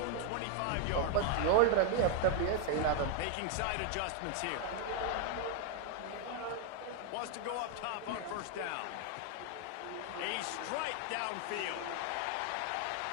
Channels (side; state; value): both; different; correlation 0.00